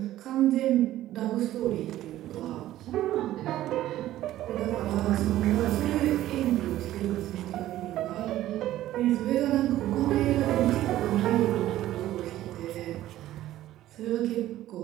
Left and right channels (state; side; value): quieter; left; 14.1 dB